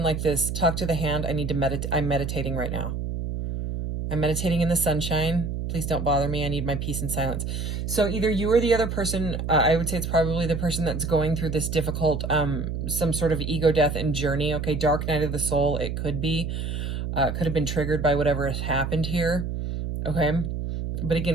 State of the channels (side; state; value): right; noise; hum, 3 dB below the sound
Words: like this, talk to the hand. I need to meditate. I'm meditating right now. I'm meditating in the sunshine. Please don't bother me. I need my peace and silence. So either you or the other person, I would say it's probably the person that's going through this difficult, some sort of ego death and journey. Okay, dark night of the soul, it could be. Could have been triggered by whatever has happened here. Okay, but